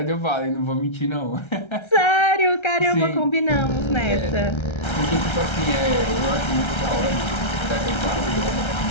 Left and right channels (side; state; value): right; late; 1.3 ms